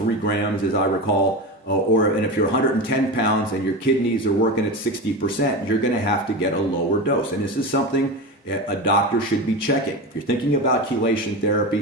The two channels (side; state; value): both; normal; correlation 0.23